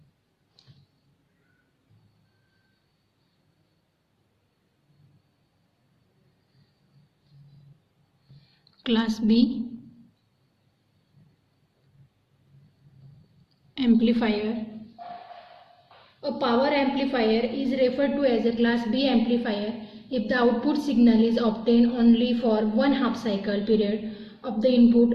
Class B amplifier. A power amplifier is referred to as a class B amplifier if the output signal is obtained only for 1/2 cycle period of the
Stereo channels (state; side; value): identical; both; correlation 1.00